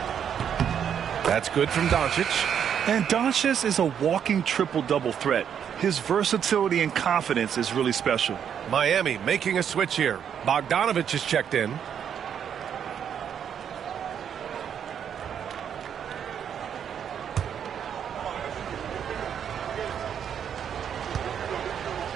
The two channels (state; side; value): quieter; left; 8.4 dB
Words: That's good from Doncic. And Doncic is a walking triple-double threat. His versatility and confidence is really special. Miami making a switch here. Bogdanovich is checked in.